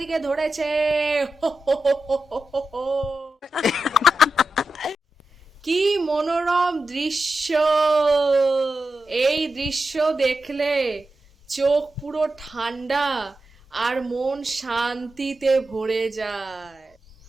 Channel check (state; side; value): normal; both; correlation 0.90